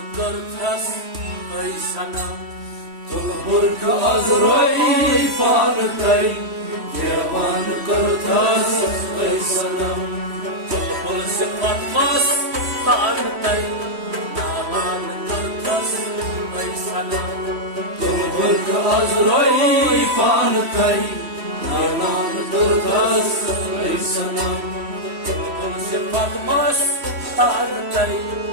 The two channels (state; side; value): late; left; 3.1 ms